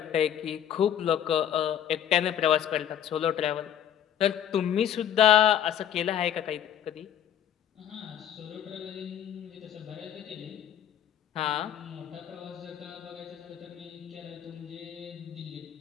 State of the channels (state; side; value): quieter; right; 10.1 dB